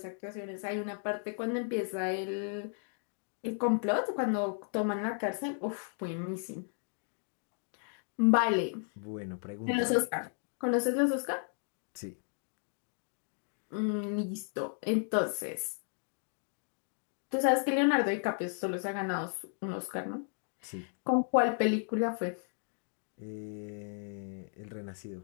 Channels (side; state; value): right; silent; 55 dB below the other